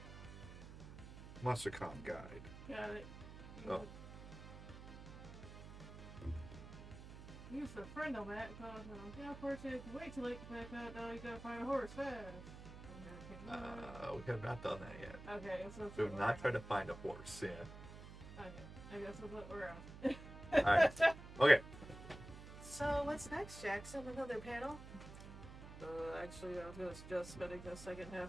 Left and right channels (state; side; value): noise; right; hum, 13 dB below the sound